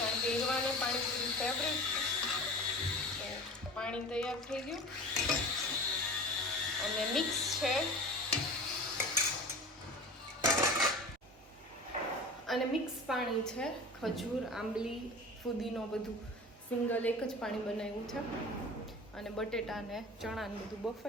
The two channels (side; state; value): both; normal; correlation 0.37